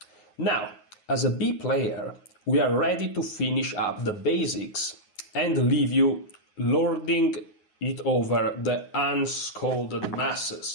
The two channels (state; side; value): late; right; 9.5 ms